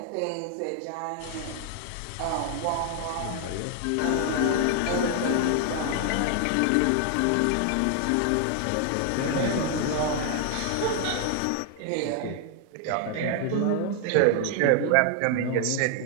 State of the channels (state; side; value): different; both; correlation 0.00